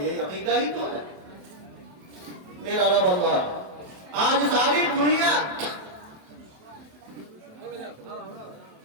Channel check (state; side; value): late; left; 27 ms